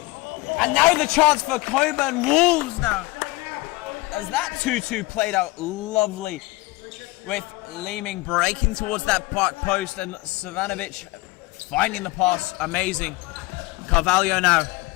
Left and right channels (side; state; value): right; quieter; 21.4 dB